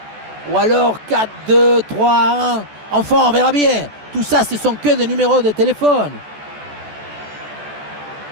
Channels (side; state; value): left; late; 14 ms